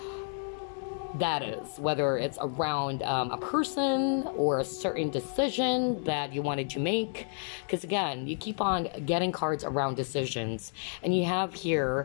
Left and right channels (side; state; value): right; silent; digital silence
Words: that is, whether it's around a person or a certain decision that you wanted to make, because again, you keep on getting cards around decisions, and you have